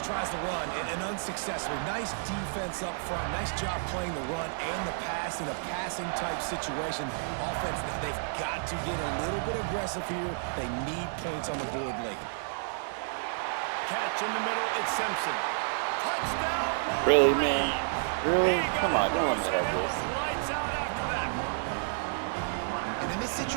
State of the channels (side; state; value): left; silent; digital silence